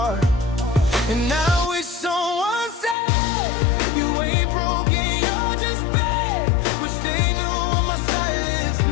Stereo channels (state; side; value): drops out; right; at 3.0 s